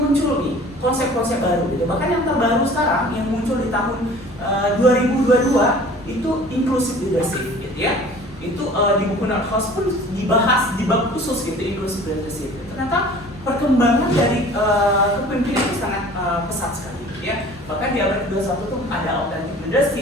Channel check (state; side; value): normal; both; correlation 0.46